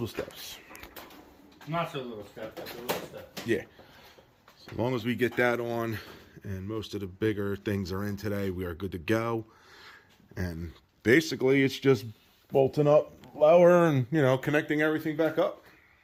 steps. Not so little steps, but little steps. Yeah. So as long as we get that on and most of the bigger things are in today, we are good to go. And basically it's just bolting up lower and, you know, connecting everything back up.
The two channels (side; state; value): both; identical; correlation 1.00